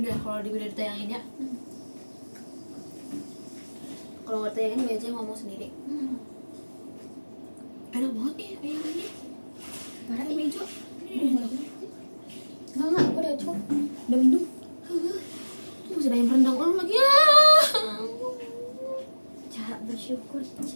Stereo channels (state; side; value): inverted; both; correlation -1.00